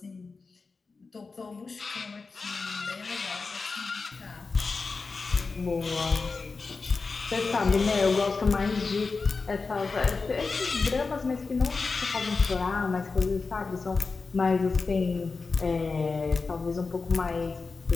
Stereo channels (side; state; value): right; quieter; 4.3 dB